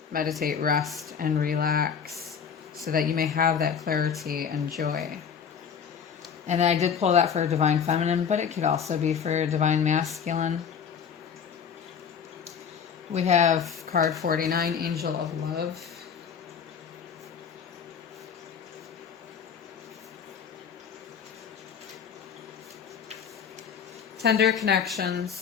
meditate, rest, and relax so that you may have that clarity and joy. And I did pull that for divine feminine, but it could also be for divine masculine. We have card 49, Angel of Love. Tender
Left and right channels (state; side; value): quieter; right; 7.2 dB